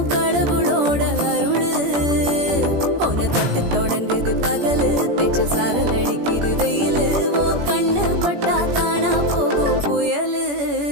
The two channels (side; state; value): left; late; 17 ms